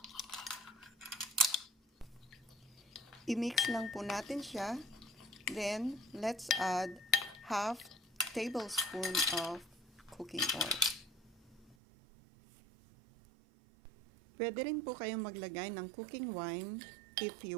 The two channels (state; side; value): drops out; left; at 11.8 s